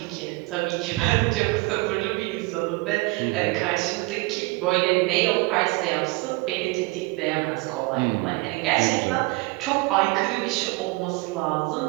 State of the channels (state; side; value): quieter; left; 24.2 dB